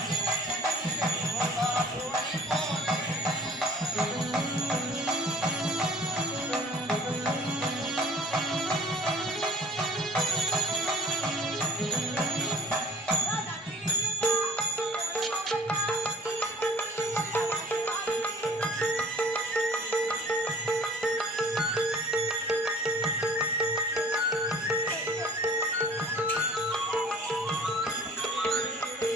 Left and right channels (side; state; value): both; normal; correlation 0.50